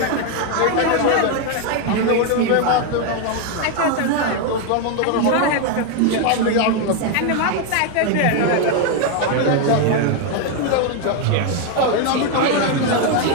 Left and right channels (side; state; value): both; different; correlation 0.01